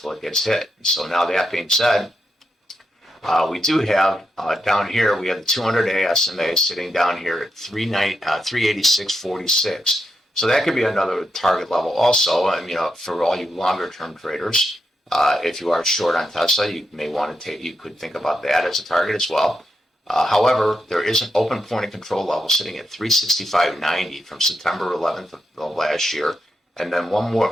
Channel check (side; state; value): both; normal; correlation 0.84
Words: it gets hit. So now that being said, we do have down here, we have the 200-day SMA sitting down here at 386.46. So that could be another target level also. For all you longer term traders, if you are short on Tesla, you may want to you could think about that as a target as well. However, there is an open point of control level sitting at 365.90 from September 11th of last year. And then one